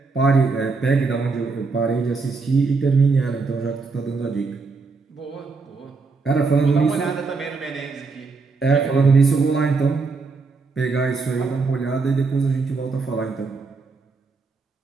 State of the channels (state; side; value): quieter; left; 4.3 dB